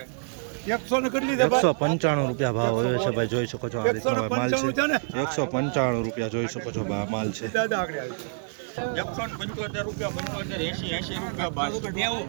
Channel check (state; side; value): silent; left; 60 dB below the other